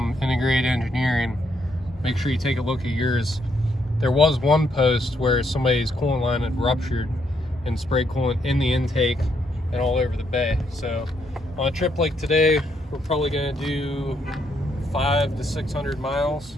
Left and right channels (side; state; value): both; normal; correlation 0.75